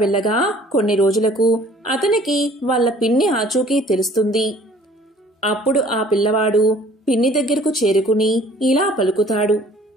కొన్ని రోజులకు అతనికి వాళ్ళ పిన్ని ఆచూకీ తెలుస్తుంది. అప్పుడు ఆ పిల్లవాడు పిన్ని దగ్గరకు చేరుకుని ఇలా పలుకుతాడు.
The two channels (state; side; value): normal; both; correlation 0.53